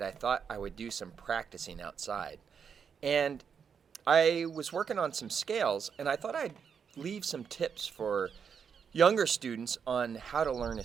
I thought I would do some practicing outside. And I was working on some scales, and I thought I'd leave some tips for younger students on how to learn a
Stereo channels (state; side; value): quieter; left; 6.8 dB